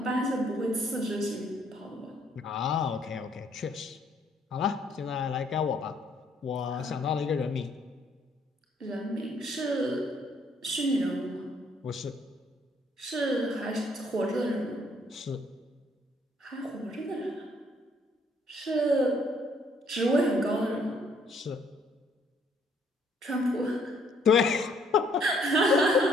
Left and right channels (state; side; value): normal; both; correlation 0.66